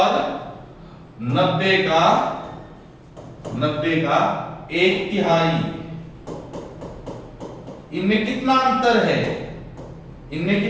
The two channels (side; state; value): both; identical; correlation 1.00